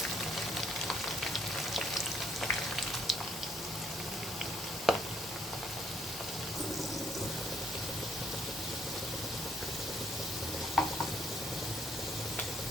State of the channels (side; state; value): both; normal; correlation 0.68